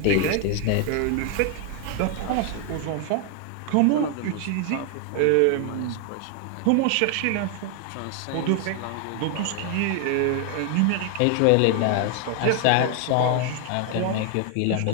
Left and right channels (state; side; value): different; both; correlation 0.00